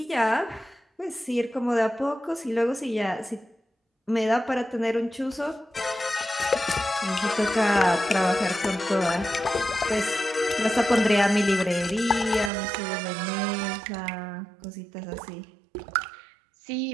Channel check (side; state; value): left; drops out; at 12.5 s